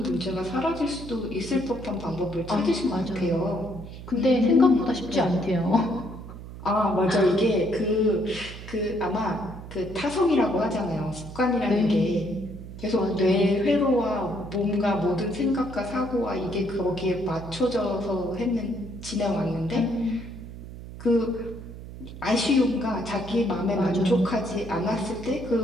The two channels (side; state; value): right; noise; hum, 13 dB below the sound